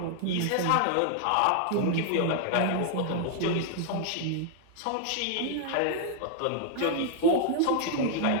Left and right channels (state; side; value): different; both; correlation -0.01